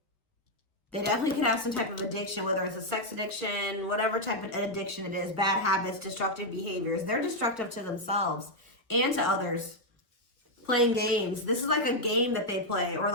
They definitely could have some type of addiction, whether it's a sex addiction, whatever type of addiction it is, bad habits, destructive behaviors. They're destructive to themselves and to others. Playing games. This is like a game that they play, or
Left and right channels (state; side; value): normal; both; correlation 0.00